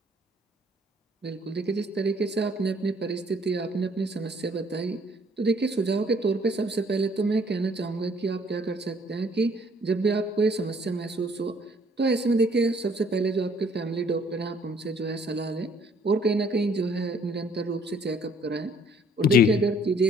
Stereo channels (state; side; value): normal; both; correlation 0.61